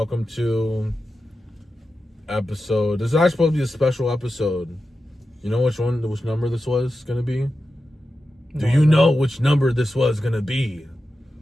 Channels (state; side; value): normal; both; correlation 0.91